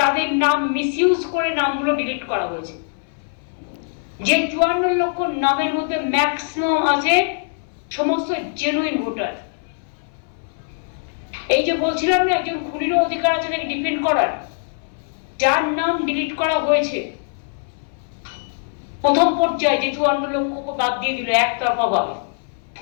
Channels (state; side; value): silent; right; 59 dB below the other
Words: নাম মিসইউজ করে নামগুলো ডিলিট করা হয়েছে। যে 54 লক্ষ নামের মধ্যে ম্যাক্সিমাম আছে সমস্ত জেনুইন ভোটার। এই যে বলছিলাম না একজন খুনিরও অধিকার আছে তাকে ডিফেন্ড করার, যার নাম ডিলিট করা হয়েছে প্রথম পর্যায়ে, যে 54 লক্ষ বাদ দিয়ে দিল একতরফা ভাবে,